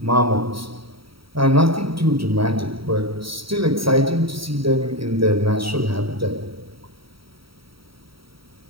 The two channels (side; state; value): left; late; 0.75 ms